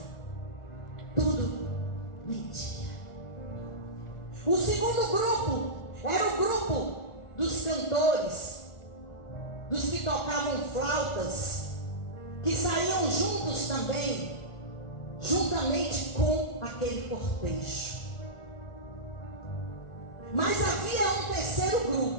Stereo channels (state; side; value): late; right; 1.4 ms